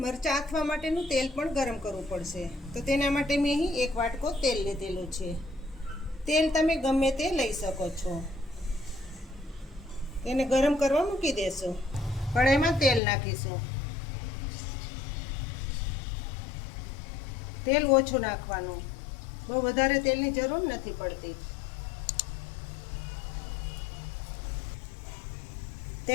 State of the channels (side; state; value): right; drops out; at 13.0 s